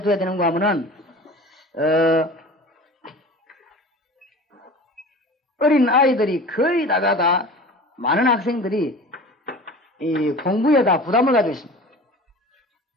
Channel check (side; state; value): both; normal; correlation 0.38